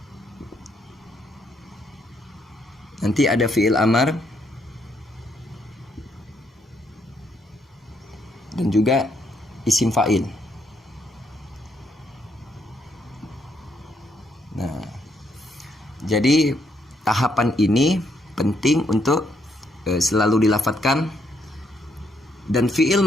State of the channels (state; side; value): normal; both; correlation 0.74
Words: Nanti ada fi'il amar dan juga isim fa'il. Nah, jadi tahapan ini penting untuk selalu dilafadzkan. Dan fi'il